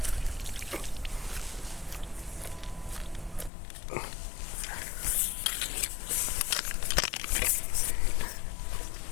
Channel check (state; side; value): drops out; right; at 3.5 s